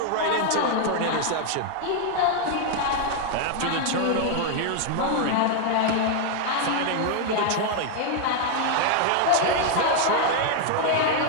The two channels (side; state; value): both; different; correlation 0.00